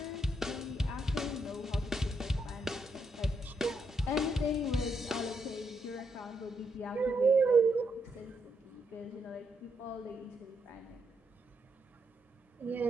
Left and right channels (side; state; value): both; normal; correlation 0.79